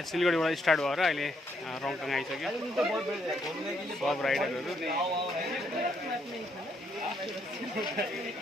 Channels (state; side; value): normal; both; correlation 0.73